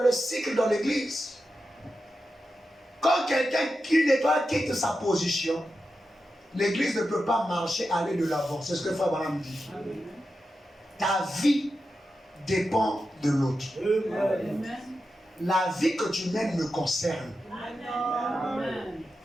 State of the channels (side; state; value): both; normal; correlation 0.90